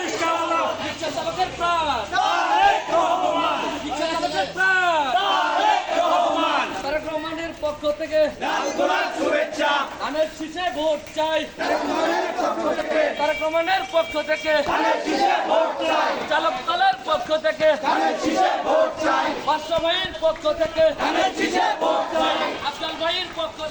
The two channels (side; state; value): both; identical; correlation 1.00